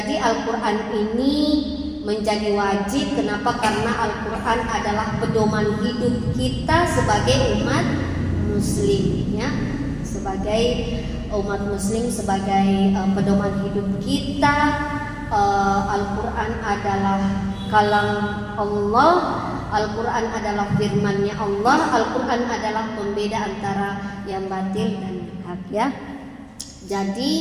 Al-Quran ini menjadi wajib. Kenapa? Karena Al-Quran adalah pedoman hidup kita sebagai umat muslim, ya. Sebagai umat muslim, sebagai pedoman hidup kita. Al-Quran adalah kalam Allah, Al-Quran adalah firman-Nya Allah, Al-Quran adalah pembeda antara yang batil dan yang hak, ya. Jadi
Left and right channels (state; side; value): identical; both; correlation 1.00